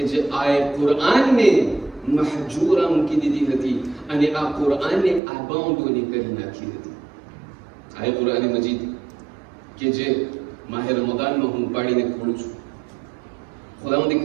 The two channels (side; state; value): left; drops out; at 5.2 s